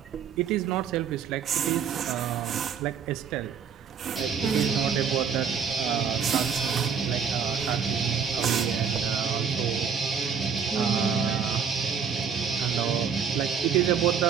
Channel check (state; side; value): quieter; left; 6.9 dB